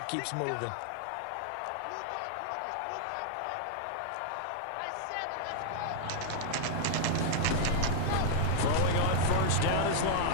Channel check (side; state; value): both; different; correlation -0.01